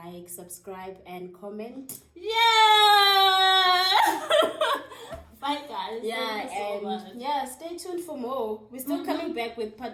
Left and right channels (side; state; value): both; identical; correlation 1.00